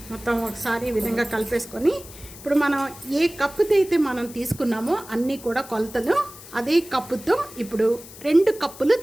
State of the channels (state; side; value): noise; left; hiss, 17 dB below the sound